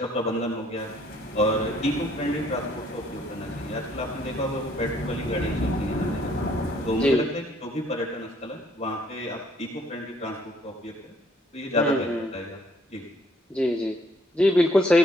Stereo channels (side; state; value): both; normal; correlation 0.64